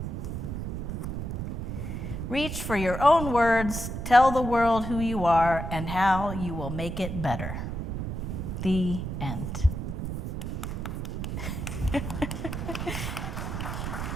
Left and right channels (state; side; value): noise; right; rumble, 4 dB below the sound